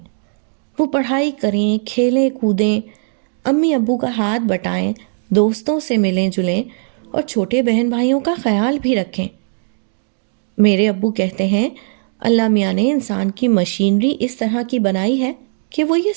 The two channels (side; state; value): left; silent; digital silence